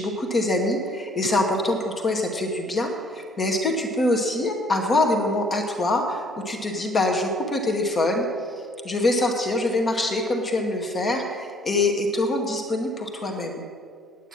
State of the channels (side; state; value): both; normal; correlation 0.60